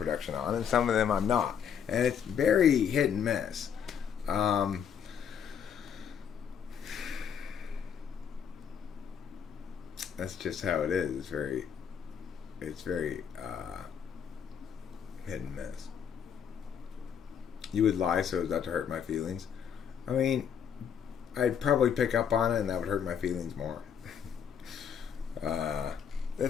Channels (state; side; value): quieter; right; 7.9 dB